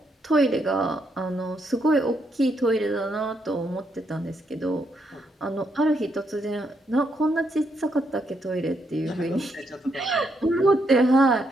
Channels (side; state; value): both; normal; correlation 0.77